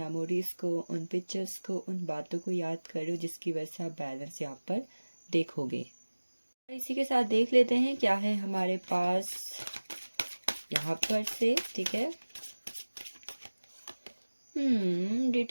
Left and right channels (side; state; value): both; inverted; correlation -1.00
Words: को, उन पिक्चर्स को, उन बातों को याद करो जिसकी वजह से आप बैलेंस यहाँ पर देखोगे। इसी के साथ देख लेते हैं क्या है हमारे पास यहाँ पर से, ठीक है।